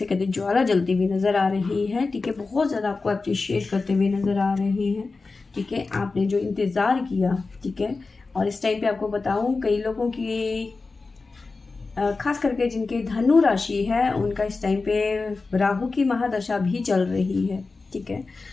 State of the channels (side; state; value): right; quieter; 3.9 dB